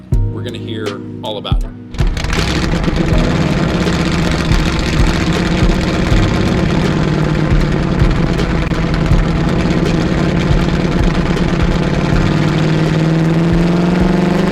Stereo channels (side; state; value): both; identical; correlation 1.00